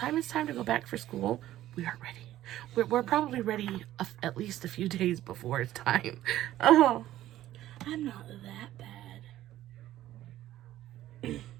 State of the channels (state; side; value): quieter; left; 13.8 dB